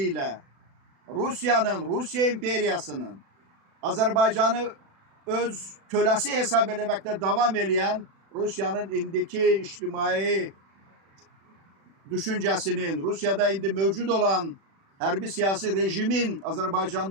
Rusiyanın, Rusiya imperiyasının Azərbaycanı öz köləsi hesab eləməkdə davam eləyən Rusiyanın indiki ictimai düşüncəsinin, Rusiyada indi mövcud olan hərbi siyasi rejimin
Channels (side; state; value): left; late; 36 ms